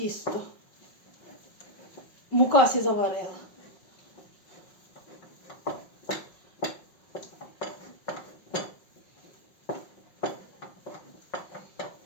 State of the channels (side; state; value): right; late; 5.6 ms